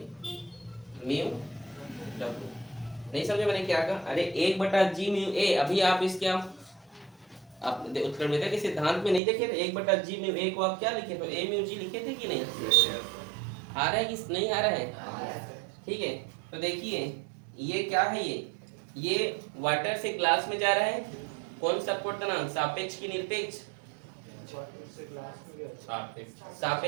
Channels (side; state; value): left; drops out; at 9.2 s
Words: म्यू W। नहीं समझे मैंने क्या कहा? अरे 1/g/a, अभी आप इसके आप उत्क्रमणियता के सिद्धांत में नहीं देखे थे 1/g/a को आप क्या लिखे तो a/g लिखे थे कि नहीं? आ रहा है कि नहीं आ रहा है? ठीक है, तो देखिए ये क्या है, ये वाटर से ग्लास में जा रहा है, कौन सा अपवर्तनांक? सापेक्ष की निरपेक्ष?